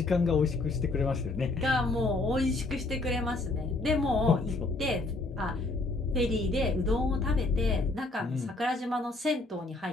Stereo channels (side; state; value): right; quieter; 3.1 dB